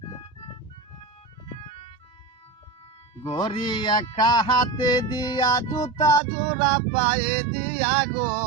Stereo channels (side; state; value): left; drops out; at 6.2 s